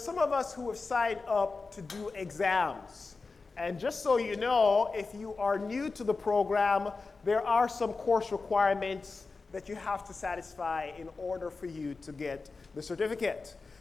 of us who have signed up to do exams. And just so you know, if you are new to the program, there are some course requirements that you have to satisfy in order for you to get the certificate.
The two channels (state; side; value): quieter; right; 4.0 dB